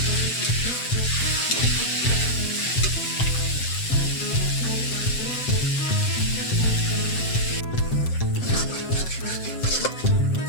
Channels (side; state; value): right; late; 7.8 ms